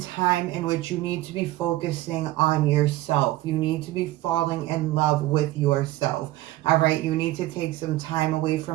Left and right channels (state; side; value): quieter; left; 16.8 dB